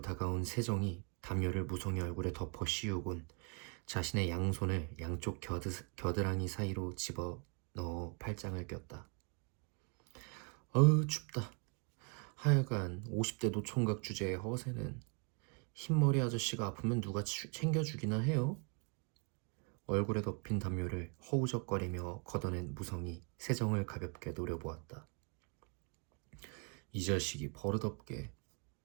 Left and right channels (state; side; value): quieter; left; 36.8 dB